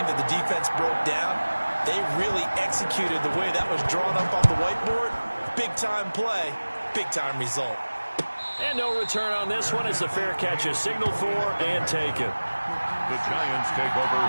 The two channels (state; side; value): inverted; both; correlation -1.00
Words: that the defense broke down. They really executed the way that was drawn up on the whiteboard. Big-time play, big-time result. And no return on this one as the fair catch is signaled for and taken. The Giants take over